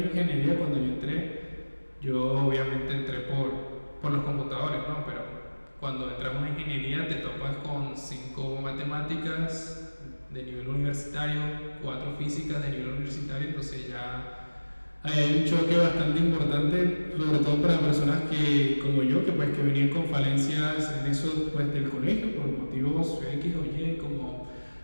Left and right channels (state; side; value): inverted; both; correlation -1.00